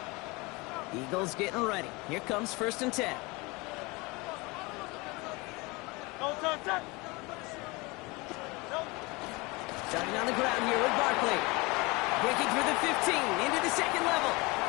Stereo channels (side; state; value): right; quieter; 25.2 dB